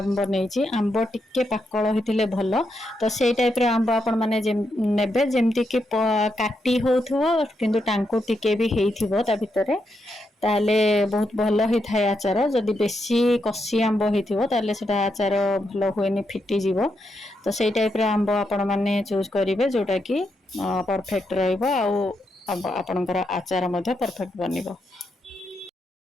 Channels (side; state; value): both; normal; correlation 0.82